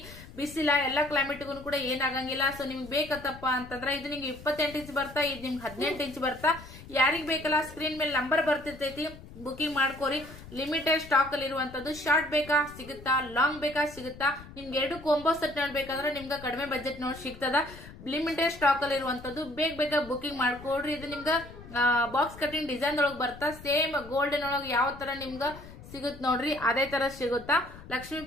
ಬಿಸಿಲ ಎಲ್ಲಾ ಕ್ಲೈಮೇಟ್ಗೂ ಕೂಡ ಏನಾಗಂಗಿಲ್ಲ. ಸೊ ನಿಮ್ಗೆ ಬೇಕತ್ತಪ್ಪ ಅಂತಂದ್ರೆ ಇದು ನಿಮ್ಗೆ 28 ಇಂಚ್ ಬರ್ತಾ, ಇದು ನಿಮ್ಗೆ 18 ಇಂಚ್ ಬರ್ತಾ. ಯಾರಿಗ್ ಬೇಕಲ್ಲ ಸ್ಕ್ರೀನ್ ಮೇಲೆ ನಂಬರ್ ಬರ್ತಿರ್ತೈತಿ, ಬುಕಿಂಗ್ ಮಾಡ್ಕೋರಿ. ಲಿಮಿಟೆಡ್ ಸ್ಟಾಕ್ ಅಲ್ಲಿ ಇರುವಂತದ್ದು. ಶಾರ್ಟ್ ಬೇಕಾ ಸಿಗುತ್ತಾ, ಲಾಂಗ್ ಬೇಕಾ ಸಿಗುತ್ತಾ. ನಿಮ್ಗೆ 2 ಕಾಂಬೋ ಸೆಟ್ ನೋಡ್ಬೇಕಂದ್ರೆ ನಿಮ್ಗೆ ಕಡಿಮೆ ಬಜೆಟ್ ನೋಡಿ ಸಿಗ್ತದ. ಲಿಮಿಟೆಡ್ ಸ್ಟಾಕ್ ಅಲ್ಲಿ ಇರುವಂತದ್ದು. ಬೇಗ ಬುಕಿಂಗ್ ಮಾಡ್ಕೊಡ್ರಿ. ಇದು ನಿಮ್ಗ ಬಾಕ್ಸ್ ಕಟಿಂಗ್ ಡಿಸೈನ್ ಒಳಗ್ ಬರ್ತಾ. ಸೇಮ್ ಗೋಲ್ಡನ್ ಒಳಗ್ ಯಾವ ತರ ನಿಮ್ಗ ಸಿಗುತ್ ನೋಡ್ರಿ ಅದೇ ತರ ಸಿಗುತ್ತಾ. ಲಕ್ಷ್ಮಿ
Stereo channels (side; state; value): left; noise; rumble, 17 dB below the sound